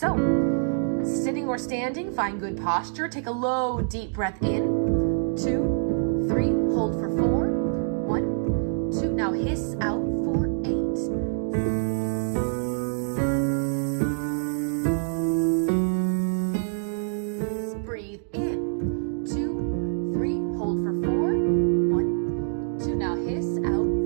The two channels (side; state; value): left; silent; digital silence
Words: sitting or standing, find good posture. Take a low, deep breath in. 2, 3, hold for 4. 1, 2, now hiss out for 8. Breathe in. 2, 3, hold for 4. 1, 2, now hiss out